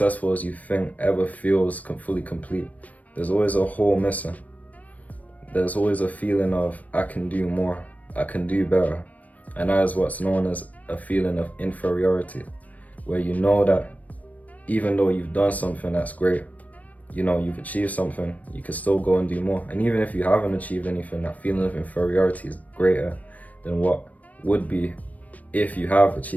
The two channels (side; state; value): right; late; 0.072 ms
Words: as you think ever feels fully complete. There's always a hole missing. There's always a feeling of, I can do more, I can do better. And that is what's known as a feeling of inferiority, where you know that even though you've done something that's great, you've achieved something, you can still go and do more. And even if you haven't achieved anything, that feeling of inferiority is greater than what would be if you have